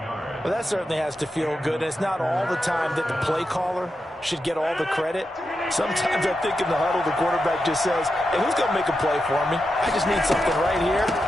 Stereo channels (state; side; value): normal; both; correlation 0.88